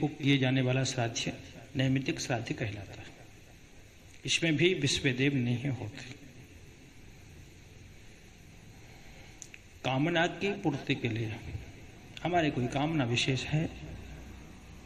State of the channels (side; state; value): both; identical; correlation 1.00